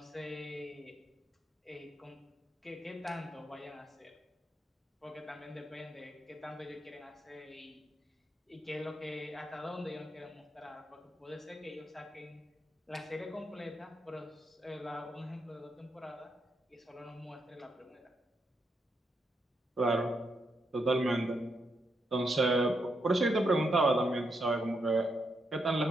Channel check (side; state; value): both; normal; correlation 0.81